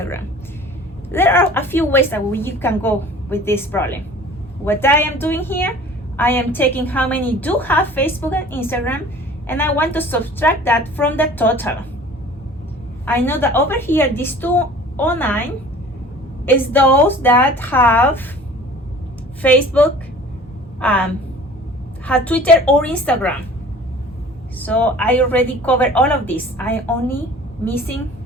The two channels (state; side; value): normal; both; correlation 0.46